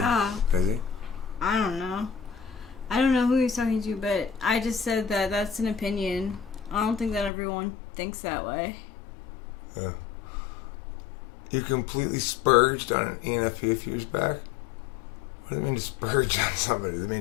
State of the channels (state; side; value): drops out; right; at 7.3 s